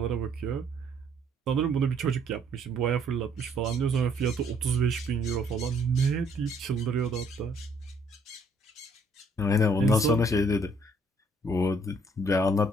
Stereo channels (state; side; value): normal; both; correlation 0.64